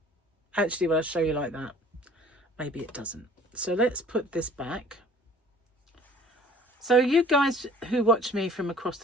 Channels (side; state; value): both; normal; correlation 0.51